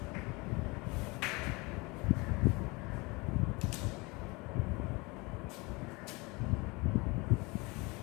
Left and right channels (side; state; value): right; quieter; 25.8 dB